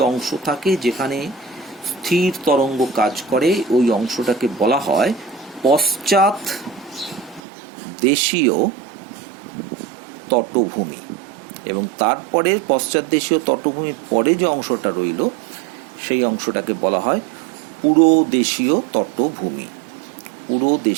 অংশ থাকে যেখানে স্থির তরঙ্গ কাজ করে, ওই অংশটাকে বলা হয় পশ্চাৎ দেশীয় তটভূমি। এবং তারপরে পশ্চাৎ দেশীয় তটভূমির পরে যে অংশটা রইল, সেই অংশটাকে বলা হয় পুরোদেশীয় তটভূমি।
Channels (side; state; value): left; drops out; at 7.4 s